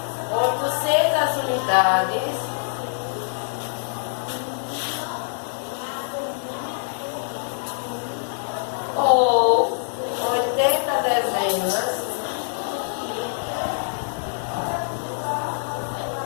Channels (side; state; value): right; silent; 56 dB below the other